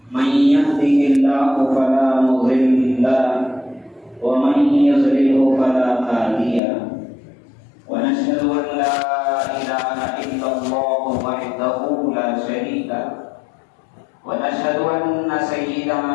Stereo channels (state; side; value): drops out; right; at 6.6 s